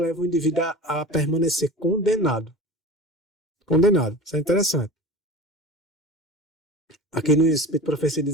o indivíduo a permanecer condenado. Condenado. Isso é interessante. Aqui no Espírito Profecia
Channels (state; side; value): normal; both; correlation 0.35